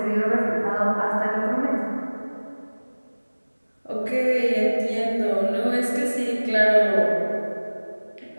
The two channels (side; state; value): both; inverted; correlation -1.00